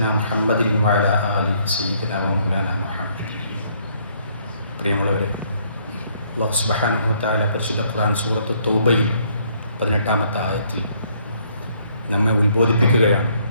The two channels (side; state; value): both; inverted; correlation -0.67